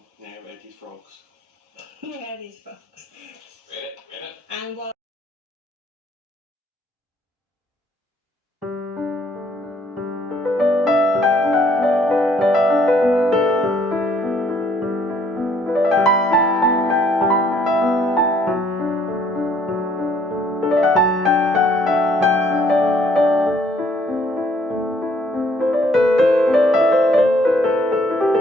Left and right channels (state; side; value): normal; both; correlation 0.64